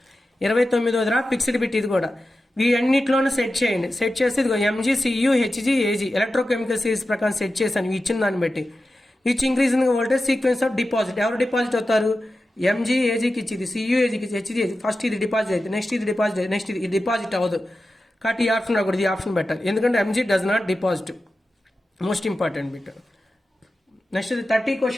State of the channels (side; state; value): both; normal; correlation 0.93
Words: 29వ ఫిక్స్డ్ బిట్ ఇది కూడా. వీటన్నిటిలోనూ సెట్ చేయండి. సెట్ చేసి ఇదిగో Mg, Cu, Hg, Ag electrochemical series ప్రకారం సెట్ చేశాను ఇచ్చిన దాన్ని బట్టి. Which increase in voltage sequence of deposit. ఎవరు డిపాజిట్ అవుతారు, Mg Agకి ఇచ్చింది, Cu Agకి Hg Ag. ఫస్ట్ ఇది డిపాజిట్ అయితే నెక్స్ట్ ఇది డిపాజిట్ అయితే నెక్స్ట్ ఇది డిపాజిట్ అవ్వదు. కాబట్టి ఈ ఆప్షన్ రాకూడదు, ఈ ఆప్షన్ పెట్టాలి. ఎందుకంటే Mg does not deposit. Most important bit. Next ఇది 30